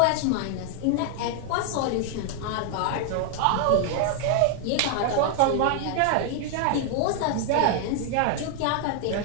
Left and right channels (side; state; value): both; different; correlation 0.00